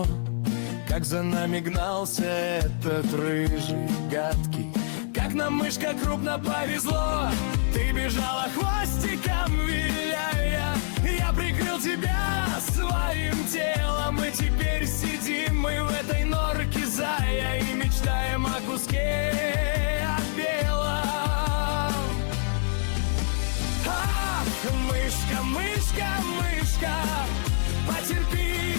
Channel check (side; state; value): right; silent; 61 dB below the other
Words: Как за нами гнался этот рыжий гадкий, как нам, мышка, крупно повезло. Ты бежала хвостиком виляя, я прикрыл тебя своим телом. И теперь сидим мы в этой норке зая и мечтаем о куске от белого. Мышка, мышка, мышка, потерпи